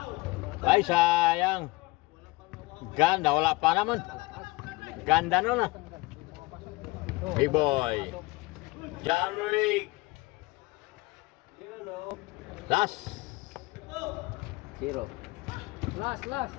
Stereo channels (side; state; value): right; quieter; 22.5 dB